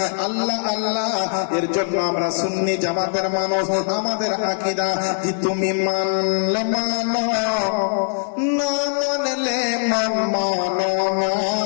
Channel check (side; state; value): right; silent; digital silence